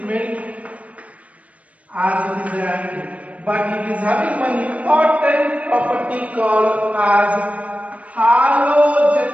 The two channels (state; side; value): late; left; 0.066 ms